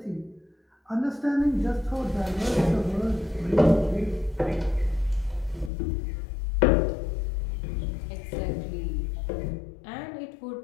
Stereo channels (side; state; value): right; drops out; at 5.7 s